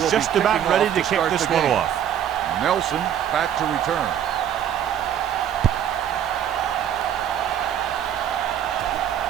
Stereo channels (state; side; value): quieter; left; 9.8 dB